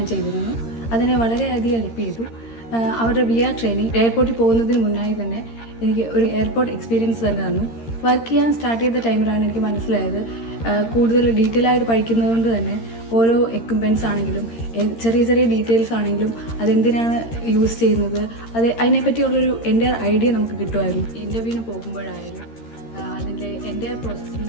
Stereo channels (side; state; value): right; late; 13 ms